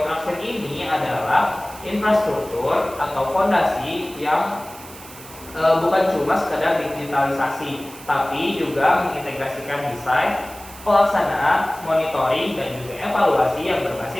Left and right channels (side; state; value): right; noise; hiss, 17 dB below the sound